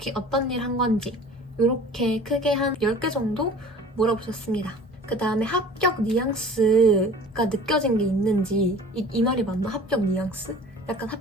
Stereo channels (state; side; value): normal; both; correlation 0.45